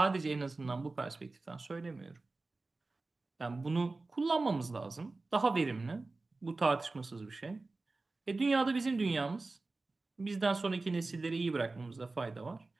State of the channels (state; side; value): quieter; left; 3.4 dB